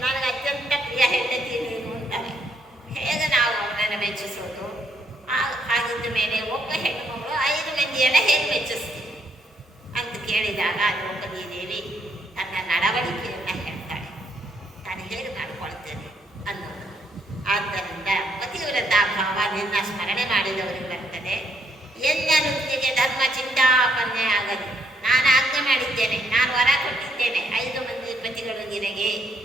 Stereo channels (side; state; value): both; normal; correlation 0.72